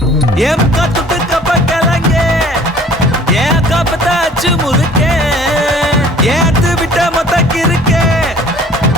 ஏன் காத்துட்டு கப்பக்கலங்க ஏன் காப்பத்தாச்சு முறுக்கே ஏத்து விட்ட மொத்தக்கு இருக்கே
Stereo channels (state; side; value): normal; both; correlation 0.51